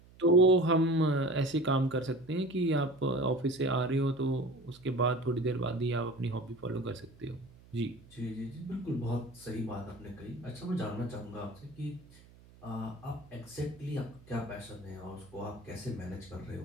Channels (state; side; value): noise; right; hum, 24 dB below the sound